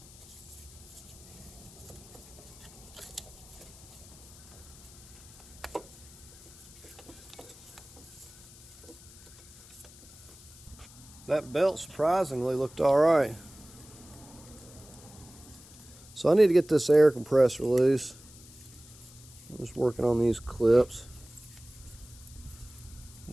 That belt surprisingly looked all right. So I need to get this air compressor loose. I'm just working on these clips.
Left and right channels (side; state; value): left; noise; hiss, 20 dB below the sound